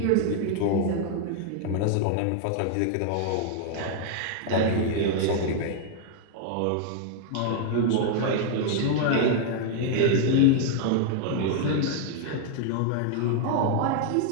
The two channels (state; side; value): different; both; correlation 0.00